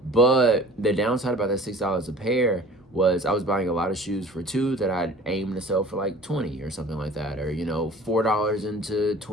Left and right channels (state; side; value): normal; both; correlation 0.46